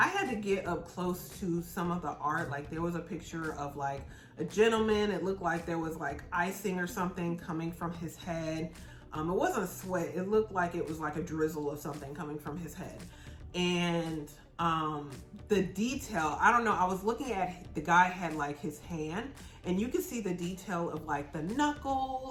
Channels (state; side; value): identical; both; correlation 1.00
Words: had to get up close to some of the art. Like there was a picture of like a gentleman. It looked like there was like icing or something coming from his head. It wasn't sweat. It looked like it was like a drizzle of something coming from his head. And the detail, I don't know, I was looking at, the guy had like his hand and you could see the detail of like the